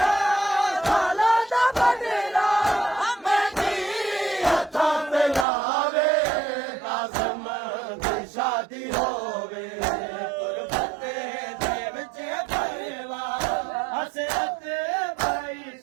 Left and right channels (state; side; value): drops out; left; at 5.5 s